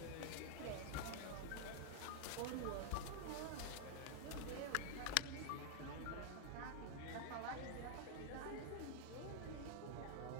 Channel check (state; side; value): different; both; correlation 0.00